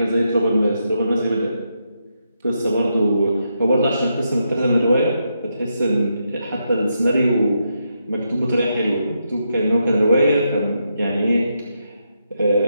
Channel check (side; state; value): both; inverted; correlation -0.82